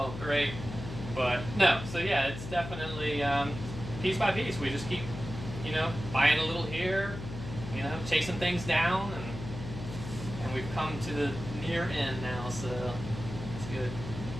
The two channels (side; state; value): left; noise; hum, 9 dB below the sound